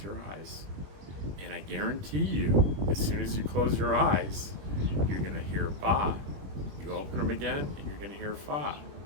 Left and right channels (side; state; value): left; late; 21 ms